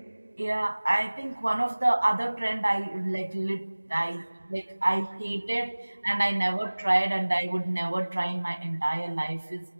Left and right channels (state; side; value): inverted; both; correlation -1.00